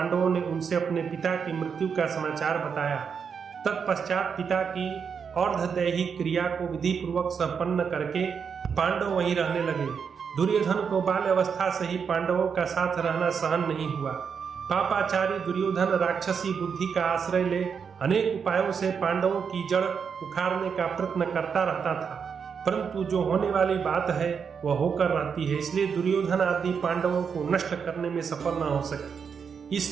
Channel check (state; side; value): quieter; left; 6.5 dB